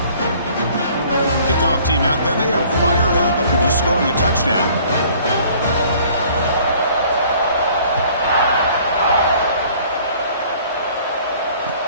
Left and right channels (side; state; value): both; inverted; correlation -0.55